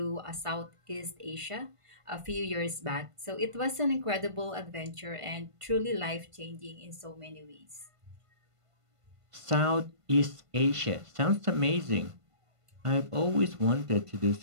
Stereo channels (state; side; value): late; left; 1.5 ms